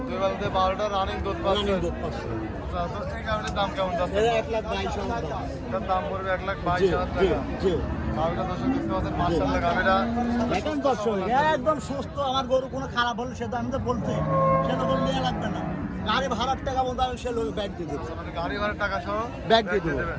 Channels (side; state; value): both; identical; correlation 1.00